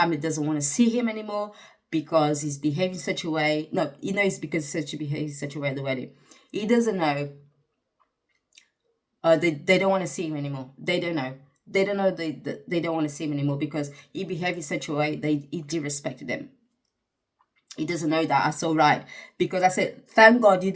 doesn't want to see him anymore because he's behaving such a way. No, he knows because he behaves such a way at the wedding. He doesn't know. They don't want to see him anymore. They don't know. They don't know they don't want to see him anymore because he behaved in such a way he disrespected them. He doesn't know that. I saw right because I said, thank God you're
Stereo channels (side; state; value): both; identical; correlation 1.00